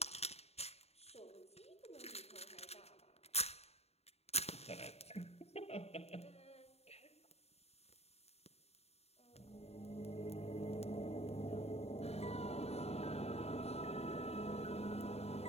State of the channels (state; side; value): late; right; 0.30 ms